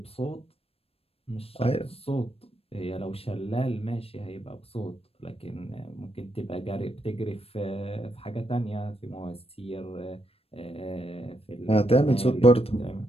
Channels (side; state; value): right; late; 0.28 ms